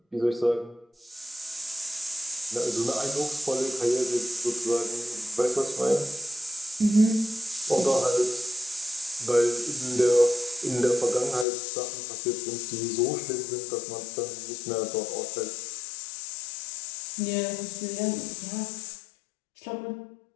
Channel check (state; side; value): drops out; right; at 11.5 s